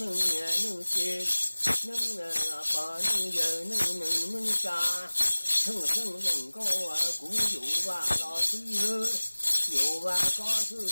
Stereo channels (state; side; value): inverted; both; correlation -1.00